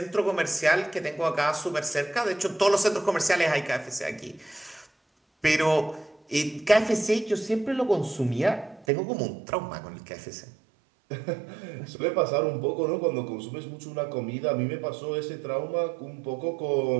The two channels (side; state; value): left; drops out; at 8.8 s